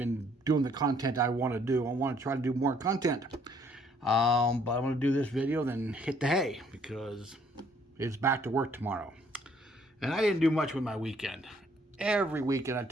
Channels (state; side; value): normal; both; correlation 0.64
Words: doing the content I want to do. I want to try to do more content. But I'm going to do this video, then hit the hay because it's back to work tomorrow. And I didn't do much with my weekend. Every weekend I